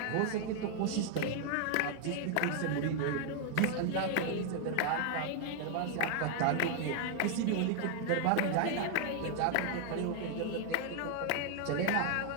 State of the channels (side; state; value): both; different; correlation 0.00